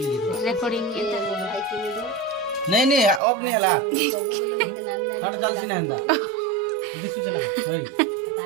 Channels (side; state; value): left; drops out; at 3.2 s